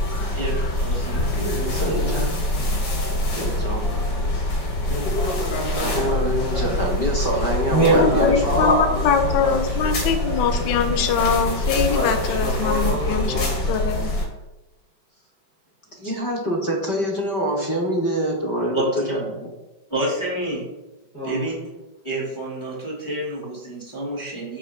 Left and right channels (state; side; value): late; right; 5.7 ms